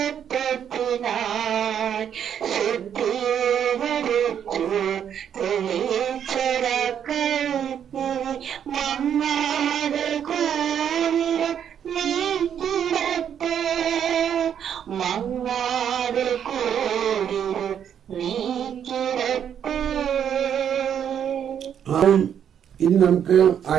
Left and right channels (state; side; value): quieter; left; 8.8 dB